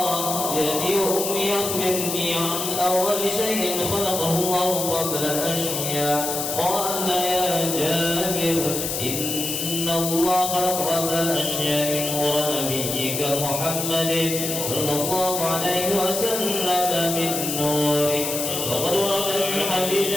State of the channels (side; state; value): left; noise; hiss, 3 dB below the sound